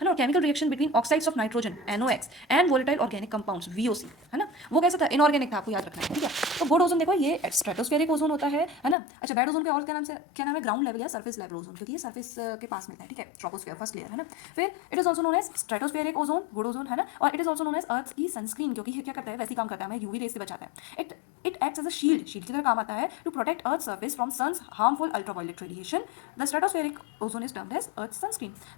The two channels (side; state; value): right; drops out; at 9.0 s